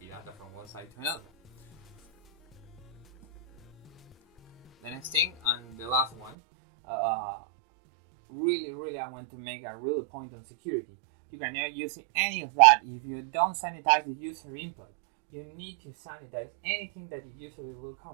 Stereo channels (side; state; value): left; drops out; at 6.3 s